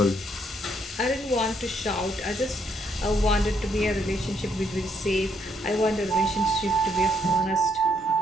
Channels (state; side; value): normal; both; correlation 0.72